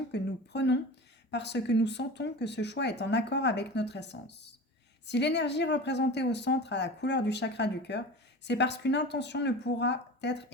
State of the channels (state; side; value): normal; both; correlation 0.34